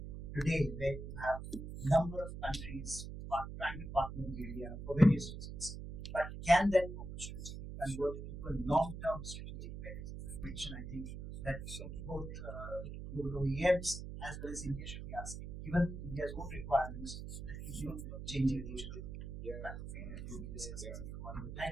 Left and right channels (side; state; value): right; noise; hum, 8 dB below the sound